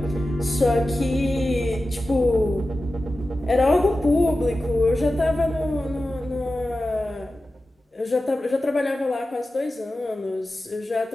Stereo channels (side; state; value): both; normal; correlation 0.94